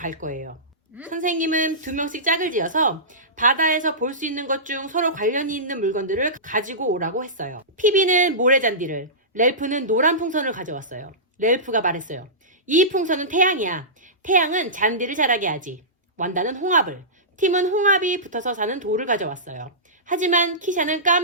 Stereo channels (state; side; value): normal; both; correlation -0.19